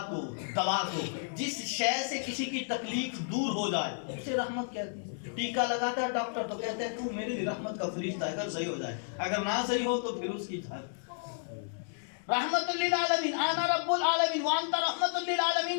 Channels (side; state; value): right; silent; digital silence